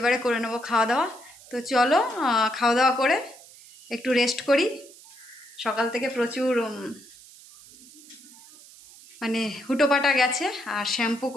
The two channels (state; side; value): noise; right; hiss, 21 dB below the sound